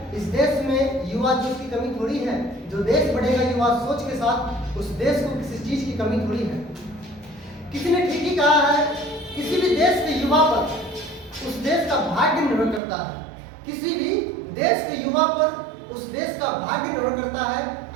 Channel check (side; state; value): left; drops out; at 12.8 s